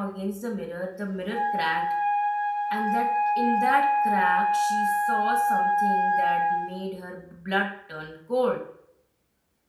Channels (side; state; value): both; identical; correlation 1.00